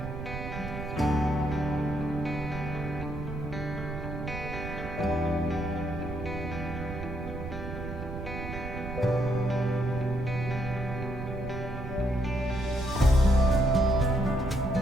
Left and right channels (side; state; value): right; noise; rumble, 7 dB below the sound